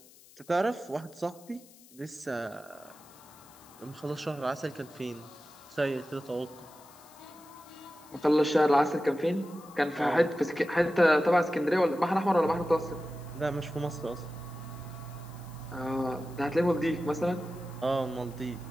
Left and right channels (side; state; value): left; noise; hiss, 24 dB below the sound